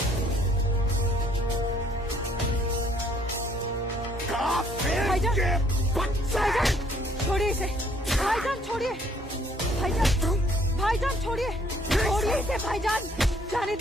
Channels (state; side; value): normal; both; correlation 0.64